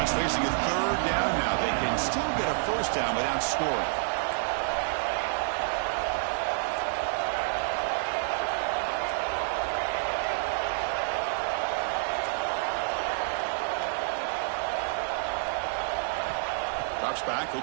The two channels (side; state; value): left; silent; digital silence